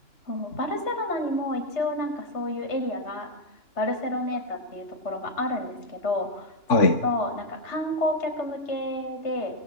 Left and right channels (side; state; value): right; late; 2.9 ms